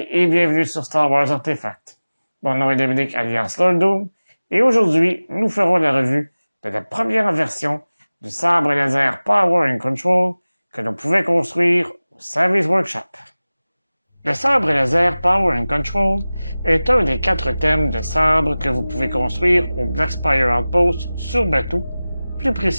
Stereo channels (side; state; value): both; inverted; correlation -0.98